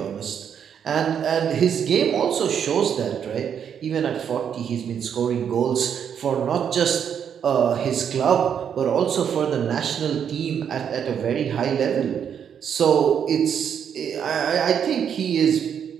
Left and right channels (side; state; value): left; quieter; 8.1 dB